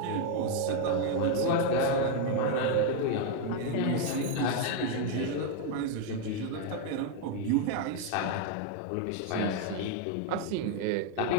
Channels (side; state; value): both; different; correlation 0.01